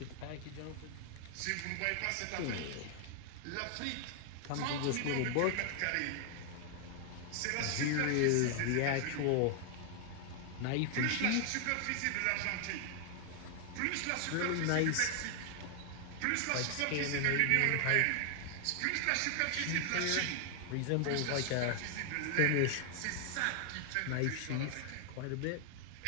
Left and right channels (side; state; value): both; different; correlation 0.00